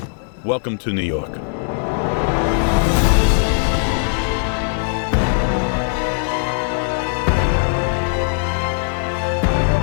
Welcome to New York.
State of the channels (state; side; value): silent; right; digital silence